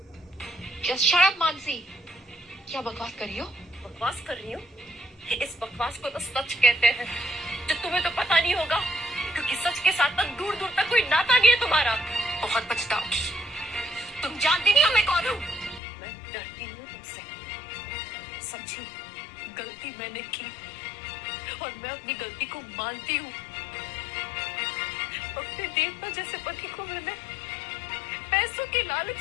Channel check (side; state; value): right; drops out; at 15.8 s